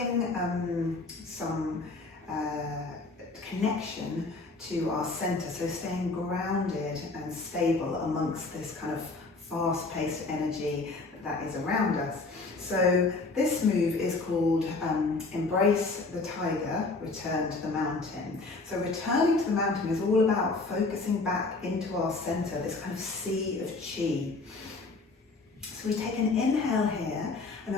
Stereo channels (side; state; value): right; quieter; 3.6 dB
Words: some connection to our centre, so staying grounded and stable amongst this kind of fast-paced energy that is around us. So this move is called Embrace the Tiger, Return to the Mountain. So returning to the mountain is all about focusing back into our centre, this kind of sea of chi. So we take an inhale here, and